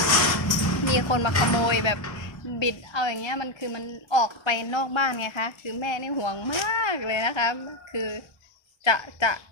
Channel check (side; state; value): right; late; 1.3 ms